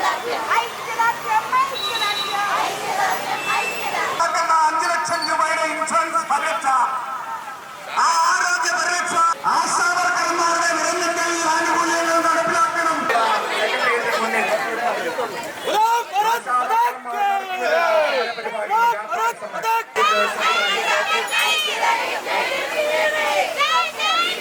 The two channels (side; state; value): both; identical; correlation 1.00